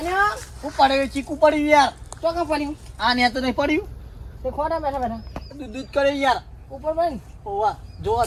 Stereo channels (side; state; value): both; identical; correlation 1.00